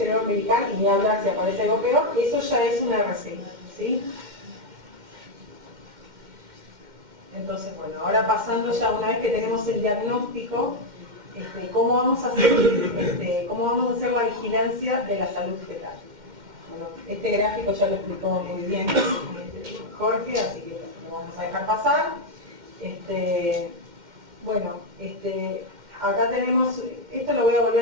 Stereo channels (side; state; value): left; late; 2.1 ms